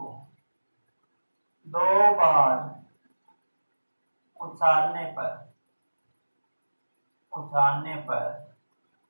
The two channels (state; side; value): inverted; both; correlation -1.00